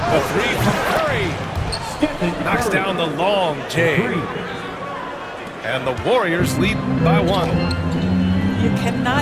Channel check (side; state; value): both; identical; correlation 1.00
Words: The three from Curry. Knocks down the long J. And the Warriors lead by 1. You